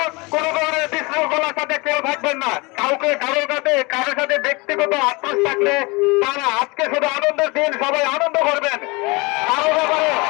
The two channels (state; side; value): quieter; right; 26.2 dB